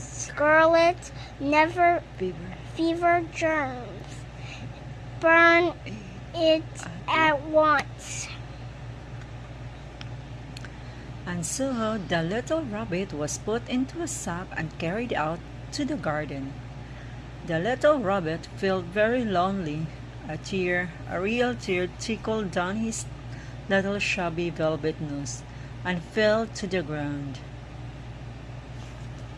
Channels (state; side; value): identical; both; correlation 1.00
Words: fever germs. Burn it at once. And so the little rabbit was put into a sack and carried out to the garden. The little rabbit felt very lonely. A real tear trickled down his little shabby velvet nose and fell to the ground.